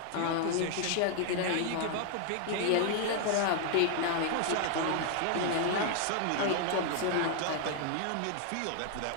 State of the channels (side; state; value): both; different; correlation 0.00